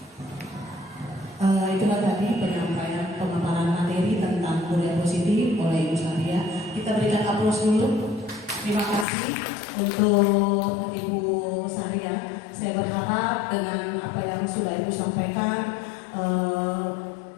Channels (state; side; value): drops out; right; at 9.1 s